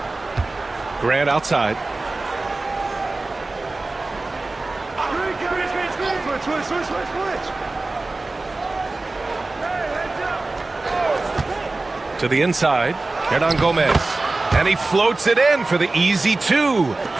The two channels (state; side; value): quieter; left; 3.2 dB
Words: Grant outside. To the inside. Hernan Gomez. And he floats it in for the easy two.